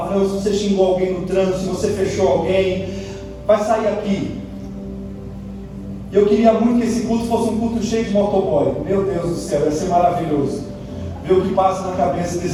se você xingou alguém no trânsito, se você fechou alguém, vai sair aqui. Eu queria muito que esse culto fosse um culto cheio de motoboy. Meu Deus do céu, ia ser maravilhoso ver o que passa na cabeça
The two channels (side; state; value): both; identical; correlation 1.00